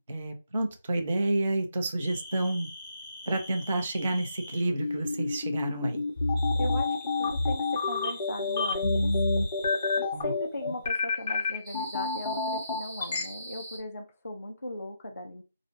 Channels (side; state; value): both; inverted; correlation -0.79